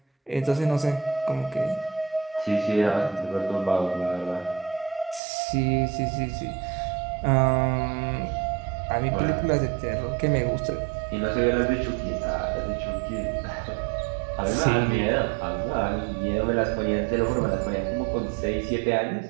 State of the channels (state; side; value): drops out; left; at 5.2 s